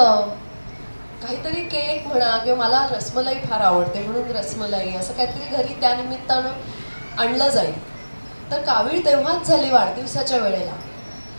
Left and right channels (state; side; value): inverted; both; correlation -1.00